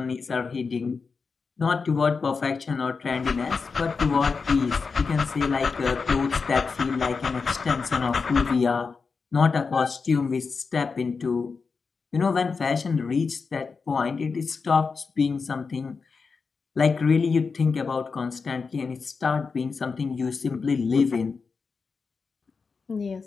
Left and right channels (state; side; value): quieter; right; 4.9 dB